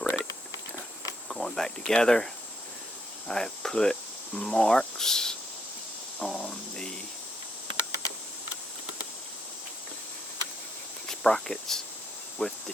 going back together, I have put marks on the sprockets with the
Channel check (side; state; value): both; normal; correlation 0.75